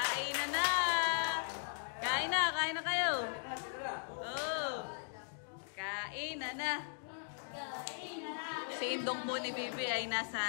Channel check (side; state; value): right; silent; digital silence